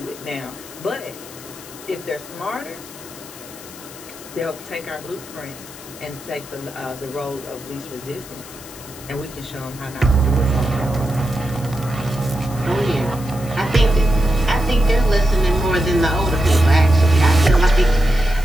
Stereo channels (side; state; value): left; noise; hiss, 17 dB below the sound